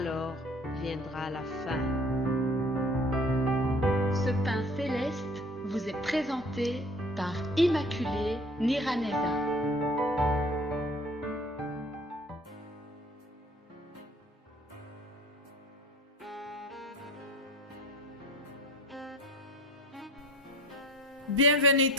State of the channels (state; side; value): normal; both; correlation 0.46